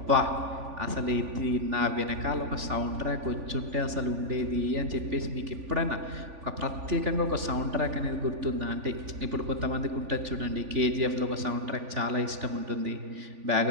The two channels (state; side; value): late; left; 3.4 ms